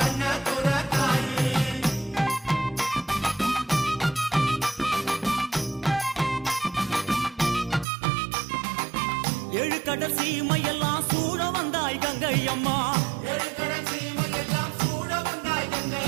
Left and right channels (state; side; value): drops out; left; at 7.9 s